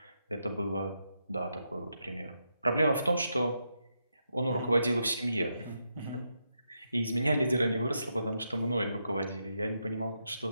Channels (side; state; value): both; inverted; correlation -0.83